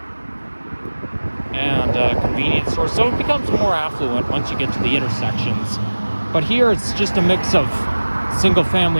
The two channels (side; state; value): both; inverted; correlation -1.00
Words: convenience stores, so it becomes more affluent once you get to the intersections. But here it's just a mix of